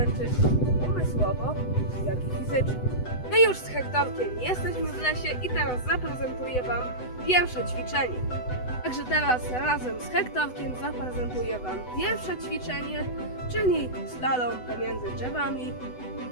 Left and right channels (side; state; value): right; late; 8.0 ms